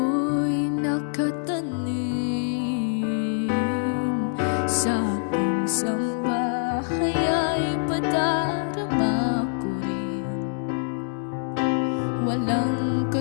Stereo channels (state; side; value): silent; right; digital silence